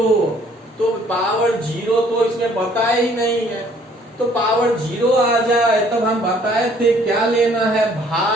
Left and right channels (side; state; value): both; normal; correlation 0.60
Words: तो पावर 0 तो इसमें बताया ही नहीं है, तो पावर 0 आ जाए तब हम बताए थे क्या लेना है,